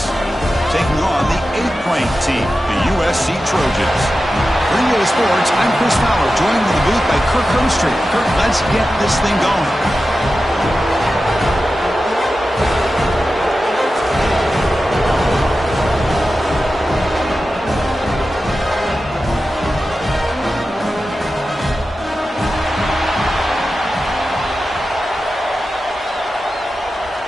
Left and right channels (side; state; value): both; normal; correlation 0.93